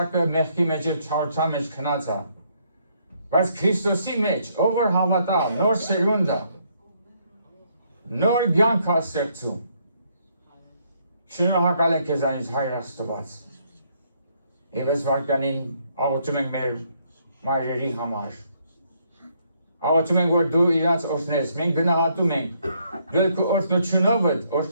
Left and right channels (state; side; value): inverted; both; correlation -0.71